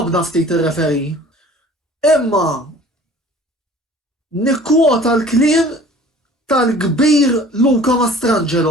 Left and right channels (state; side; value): normal; both; correlation 0.48